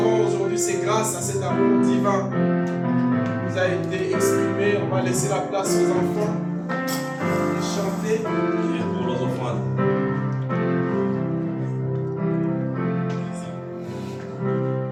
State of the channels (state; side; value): identical; both; correlation 1.00